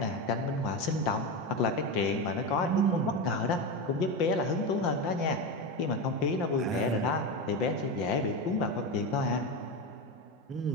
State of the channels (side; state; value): both; normal; correlation 0.17